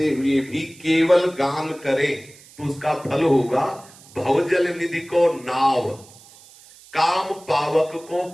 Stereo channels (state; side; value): noise; right; hiss, 23 dB below the sound